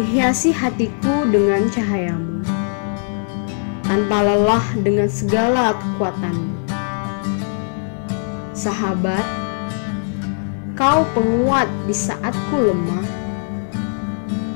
hatiku dengan cahayamu, tanpa lelah dengan segala kekuatanmu. Sahabat, kau penguat di saat ku lemah,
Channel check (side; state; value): right; silent; digital silence